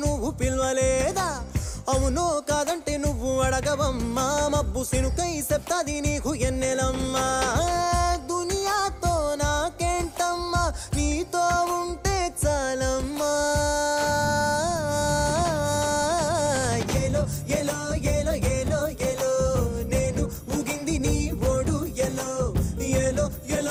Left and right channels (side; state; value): both; identical; correlation 1.00